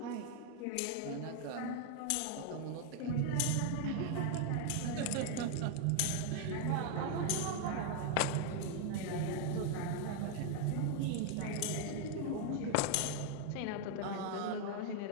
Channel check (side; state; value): both; different; correlation 0.00